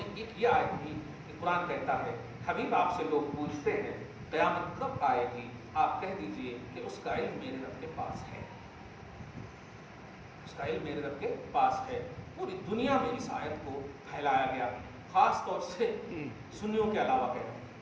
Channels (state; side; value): identical; both; correlation 1.00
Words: ایک یہ آیت بھی کہ قرآن کہتا ہے حبیب آپ سے لوگ پوچھتے ہیں قیامت کب آئے گی، آپ کہہ دیجئے کہ اس کا علم میرے رب کے پاس ہے، اس کا علم میرے رب کے پاس ہے۔ پوری دنیا میں اس آیت کو پھیلایا گیا، خاص طور سے سنیوں کے علاوہ کہہ رہے